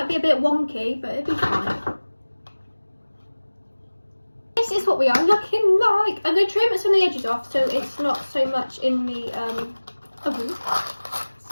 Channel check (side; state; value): both; inverted; correlation -1.00